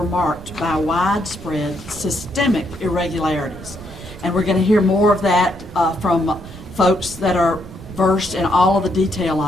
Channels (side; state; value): right; noise; rumble, 16 dB below the sound